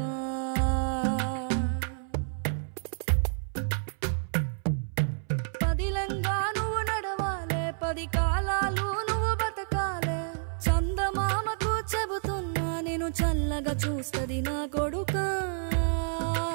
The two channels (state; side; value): silent; left; 58 dB below the other